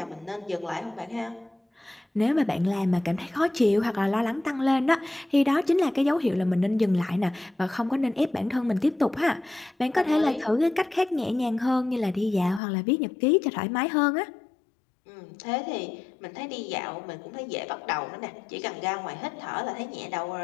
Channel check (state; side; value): drops out; right; at 12.6 s